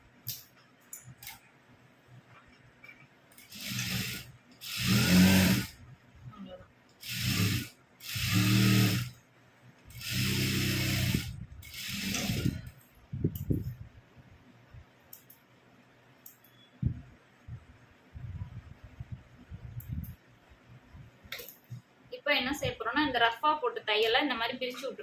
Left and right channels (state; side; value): identical; both; correlation 1.00